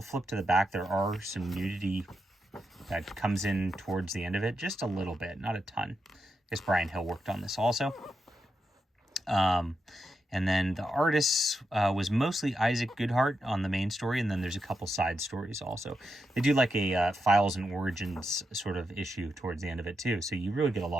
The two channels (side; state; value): both; normal; correlation 0.85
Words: to flip to the back. There are some nudity that comes in towards the end of it, just a little bit, not a ton. I guess Brian Hill worked on this also. And then the artist was mostly Isaac Goodhart on the main story, and then there's a couple side stories also. They do like a Files and Origins sort of issue towards the end of it too, so you really get a